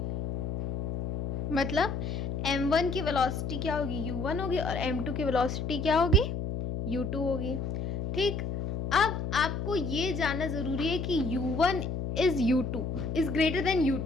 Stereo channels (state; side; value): noise; left; hum, 3 dB below the sound